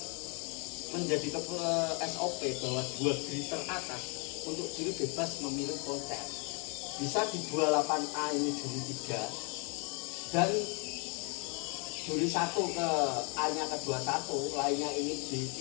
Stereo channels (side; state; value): right; quieter; 35.2 dB